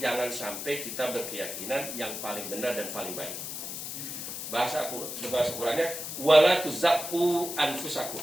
jangan sampai kita berkeyakinan yang paling benar dan paling baik. Bahasa Qurannya, wala tuzakku anfusakum.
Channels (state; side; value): noise; left; hiss, 6 dB below the sound